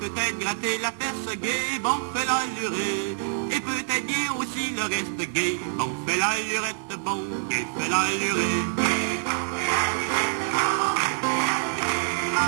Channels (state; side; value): silent; left; 61 dB below the other